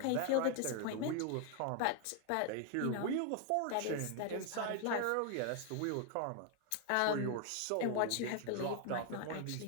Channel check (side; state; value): both; different; correlation 0.00